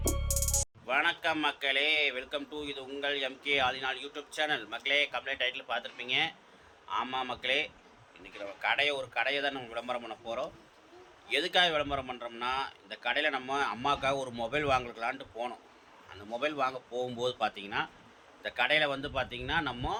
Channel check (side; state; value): both; identical; correlation 1.00